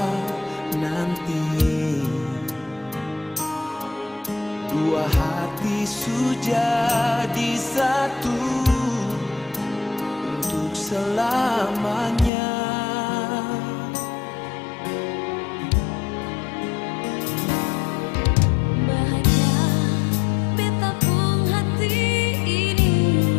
nanti. Dua hati sudah di satu untuk selamanya.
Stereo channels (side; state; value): right; drops out; at 12.3 s